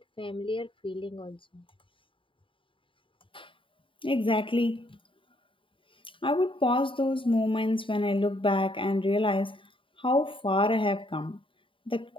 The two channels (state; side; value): late; right; 0.25 ms